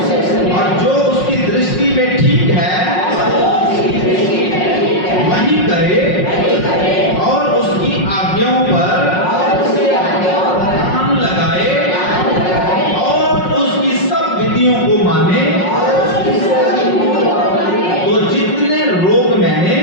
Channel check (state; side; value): late; right; 5.5 ms